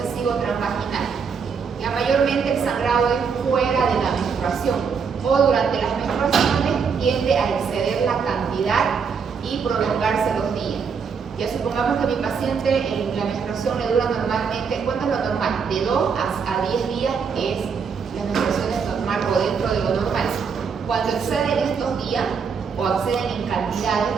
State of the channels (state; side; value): quieter; left; 6.0 dB